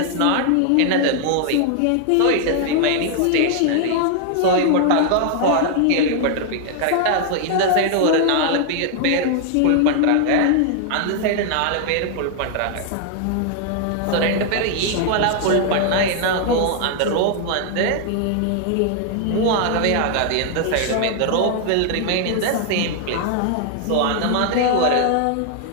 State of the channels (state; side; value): different; both; correlation 0.00